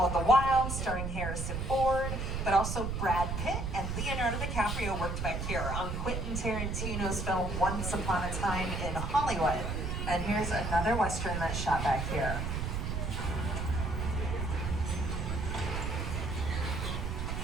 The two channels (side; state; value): right; noise; rumble, 2 dB below the sound